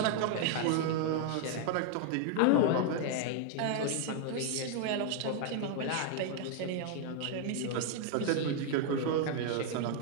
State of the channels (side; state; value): both; different; correlation 0.00